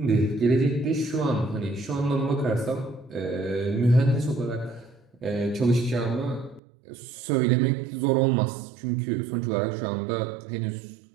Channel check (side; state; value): left; drops out; at 6.6 s